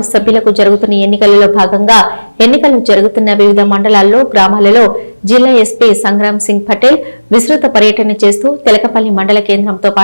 సభ్యులకు జరుగుతున్న ఎన్నికలలో భాగంగా ఎన్నికలు జరుగుతున్న వివిధ మండలాల్లో గ్రామాలలో జిల్లా ఎస్పీ సంగ్రామ్ సింగ్ పటేల్ విస్తృత పర్యటన చేస్తూ తెలకపల్లి మండల కేంద్రంతో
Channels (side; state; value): both; inverted; correlation -1.00